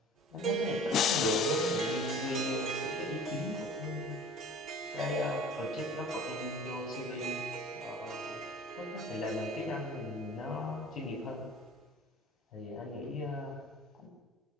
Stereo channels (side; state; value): both; normal; correlation 0.44